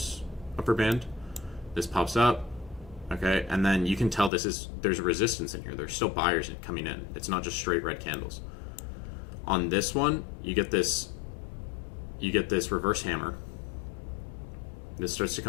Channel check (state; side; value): drops out; right; at 4.3 s